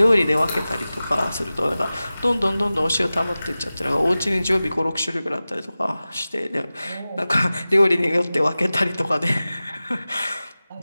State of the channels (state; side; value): inverted; both; correlation -0.97